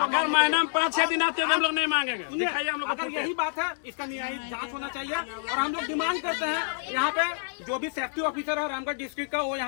अगर महीना में 5-6 दिन आते हैं हम लोग नहीं मांगेंगे। दिखाइए हम लोग। अगर यही बात है, इसका न्यायिक जांच होना चाहिए। और हम लोग डिमांड करते हैं यहाँ पे जो भी सेफ्टी ऑफिसर है रामगढ़ डिस्ट्रिक्ट का, वो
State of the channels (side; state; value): right; silent; digital silence